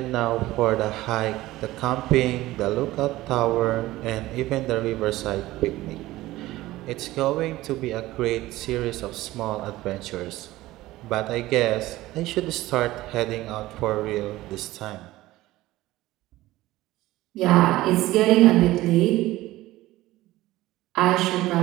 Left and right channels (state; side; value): quieter; left; 17.1 dB